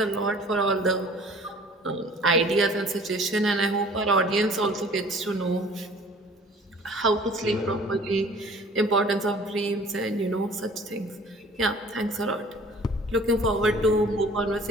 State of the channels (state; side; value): normal; both; correlation 0.50